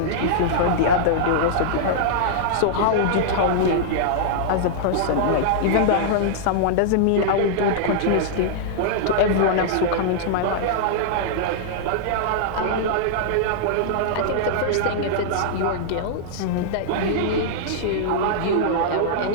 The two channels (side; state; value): both; different; correlation -0.02